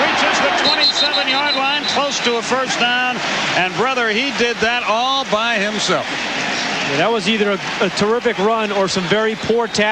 reaches the 27-yard line, close to a first down. And brother, he did that all by himself. Yeah, that was either a terrific run or some very poor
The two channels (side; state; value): both; identical; correlation 1.00